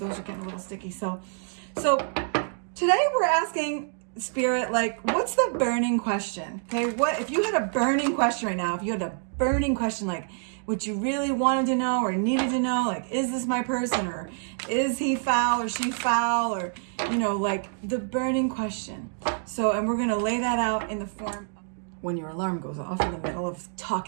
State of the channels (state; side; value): silent; left; 60 dB below the other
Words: are getting a little sticky. So today we're asking Spirit, what's the burning question? Okay, what if you had a burning question right now? If you had a burning question, what you really wanted to know or needed to know, is this my person, or is he foul or she foul, or the burning question. So, and we're gonna lay that out in the form when your alarm goes off in the middle of